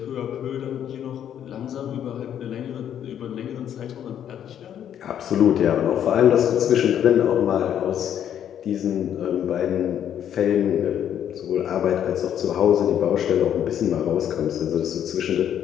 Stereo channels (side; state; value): right; quieter; 9.8 dB